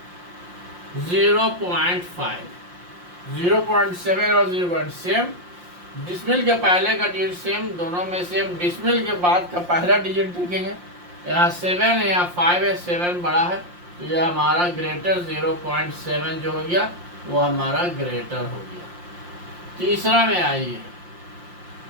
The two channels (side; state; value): left; late; 5.7 ms